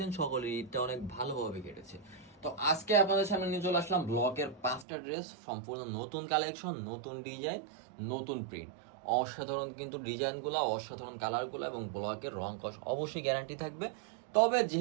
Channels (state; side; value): drops out; left; at 4.9 s